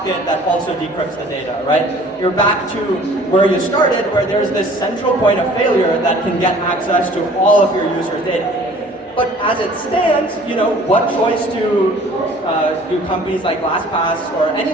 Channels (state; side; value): normal; both; correlation 0.51